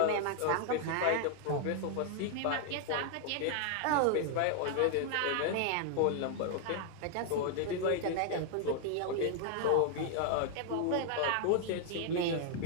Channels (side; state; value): both; different; correlation 0.00